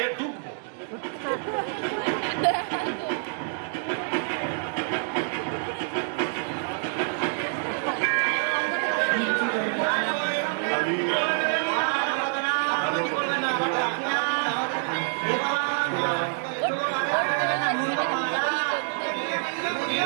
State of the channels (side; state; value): left; silent; 60 dB below the other